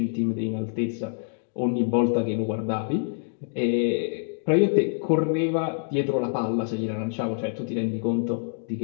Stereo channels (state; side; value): silent; right; digital silence